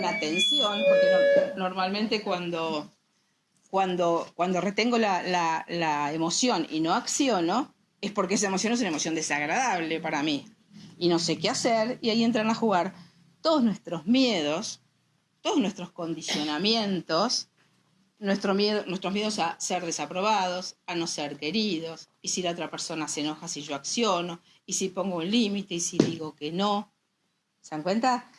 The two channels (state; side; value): identical; both; correlation 1.00